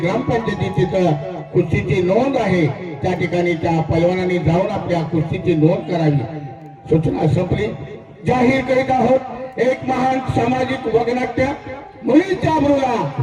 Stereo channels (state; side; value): identical; both; correlation 1.00